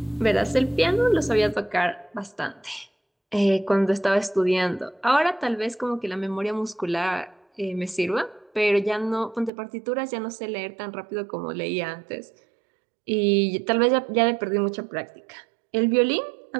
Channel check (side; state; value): left; drops out; at 9.5 s